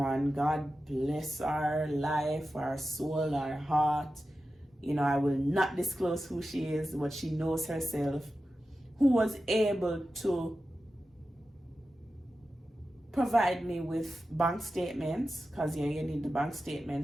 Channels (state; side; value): normal; both; correlation 0.92